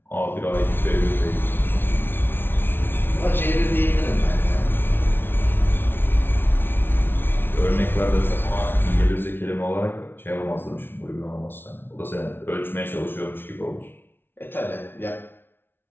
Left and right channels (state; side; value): late; right; 0.11 ms